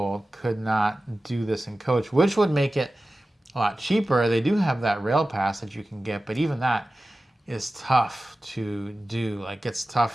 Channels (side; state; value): both; normal; correlation 0.95